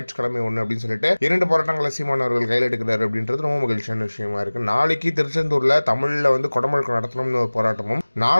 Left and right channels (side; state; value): both; inverted; correlation -1.00